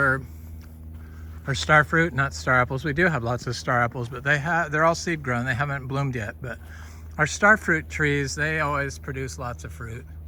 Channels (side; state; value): both; identical; correlation 1.00